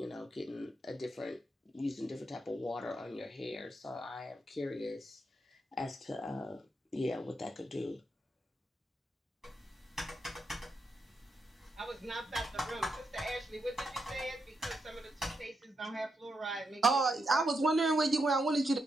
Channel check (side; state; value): both; normal; correlation 0.83